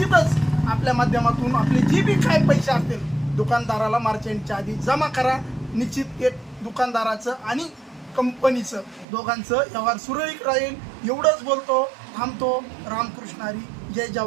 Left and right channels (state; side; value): drops out; left; at 9.1 s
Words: आपल्या माध्यमातून आपले जे बी काय पैसे असतील दुकानदाराला मार्च एंडच्या आधी जमा करा। निश्चित एक दुकानदाराचं आणि कंपनीचं दोघांचं व्यवहार सुरळीत राहील। एवढंच बोलतो, थांबतो। रामकृष्ण हरी, जय